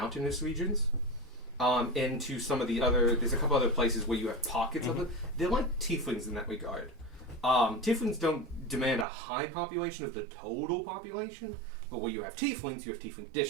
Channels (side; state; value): left; drops out; at 9.1 s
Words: regions. Into some of the other. There's a couple other places where you have pockets of it. They're like tieflings in that regard. Tieflings don't demand a high population of the total population, but where you have tiefling